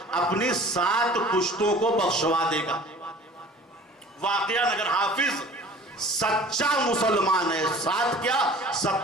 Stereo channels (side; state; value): both; normal; correlation 0.45